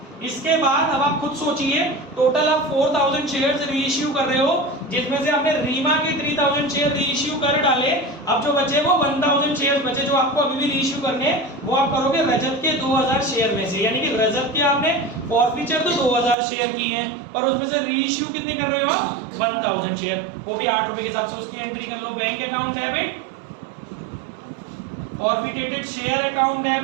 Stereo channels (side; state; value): left; drops out; at 16.4 s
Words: इसके बाद अब आप खुद सोचिए, टोटल आप 4,000 शेयर्स रीइश्यू कर रहे हो, जिसमें से आपने रीमा के 3,000 शेयर रीइश्यू कर डाले। अब जो बचे वो 1,000 शेयर बचे जो आपको अभी भी रीइश्यू करने, वो आप करोगे रजत के 2,000 शेयर में से। यानी कि रजत के आपने फॉरफीचर तो 2,000 शेयर की हैं, पर उसमें से रीइश्यू कितने कर रहे हो आप? 1,000 शेयर, वो भी 8 रुपए के हिसाब से उसकी एंट्री कर लो। Bank account debit, forfeited share account